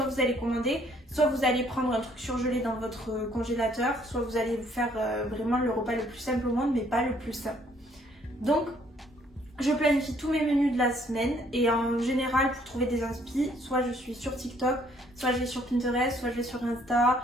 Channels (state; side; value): normal; both; correlation 0.64